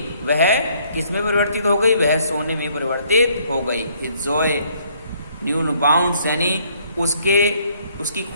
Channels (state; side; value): inverted; both; correlation -0.65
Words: वह किसमें परिवर्तित हो गई, वह सोने में परिवर्तित हो गई। His joy knew no bounds, यानी उसकी